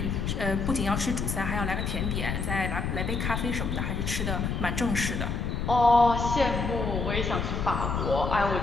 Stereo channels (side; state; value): left; noise; rumble, 1 dB below the sound